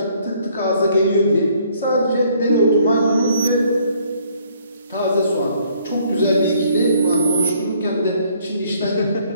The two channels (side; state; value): both; inverted; correlation -0.64